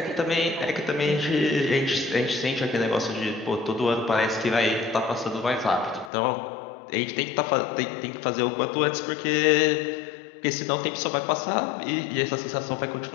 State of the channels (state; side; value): drops out; right; at 6.1 s